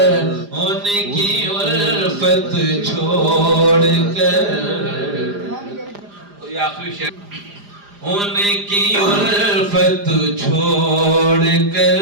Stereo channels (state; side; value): late; left; 4.9 ms